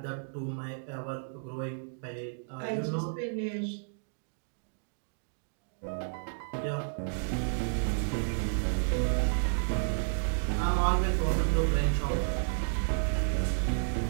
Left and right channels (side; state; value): left; silent; digital silence